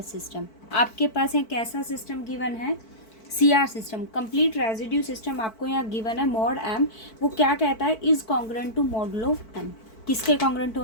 सिस्टम, आपके पास यहाँ कैसा सिस्टम गिवन है CR system, complete residue system आपको यहाँ गिवन है मॉड m। वो क्या कहता है is congruent to modulo m, किसके कॉन्ग्रुएंट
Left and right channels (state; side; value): late; right; 4.5 ms